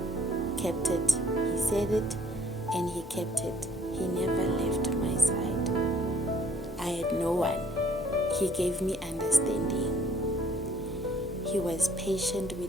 kept it. He said it, and He kept it. He never left my side. I had no one. He gave me understanding. He was patient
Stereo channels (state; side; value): normal; both; correlation 0.60